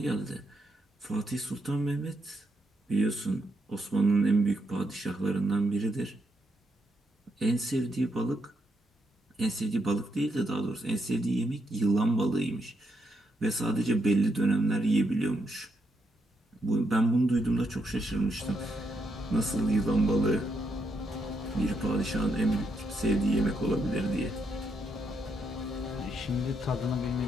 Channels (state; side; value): normal; both; correlation 0.79